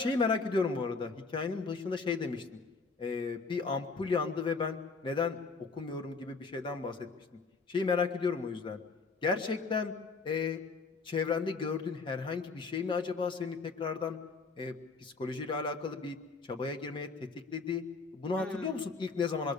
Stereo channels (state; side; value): quieter; right; 4.4 dB